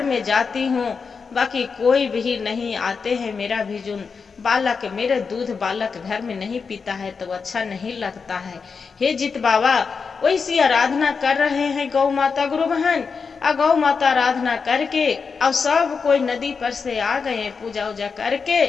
में जाती हूँ, बाकी कोई भी नहीं आते हैं, मेरा भी जो बालक मेरे दूध बालक घर में नहीं पीता है तो अच्छा नहीं लगता है। हे जित बाबा वैसी आराधना कर रहे हैं गौ माता गुरु बहन। गौ माता आराधना करके अब सब कोई नदी पर से आ गए पूजा उजा करके।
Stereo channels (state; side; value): quieter; right; 5.3 dB